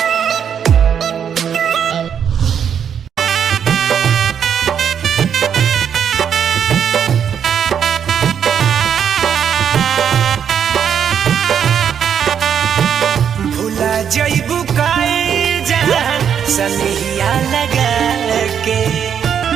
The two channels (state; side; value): quieter; left; 8.1 dB